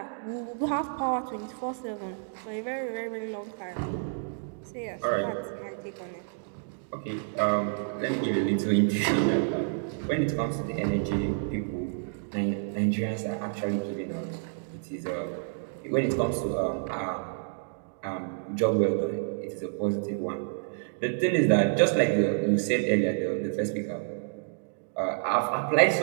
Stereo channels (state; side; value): silent; left; digital silence